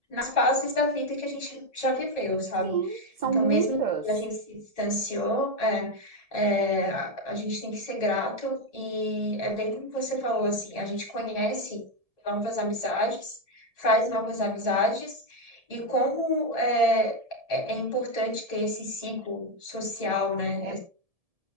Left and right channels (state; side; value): late; left; 1.7 ms